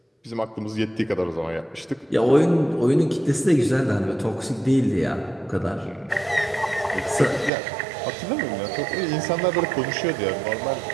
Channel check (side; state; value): left; drops out; at 7.5 s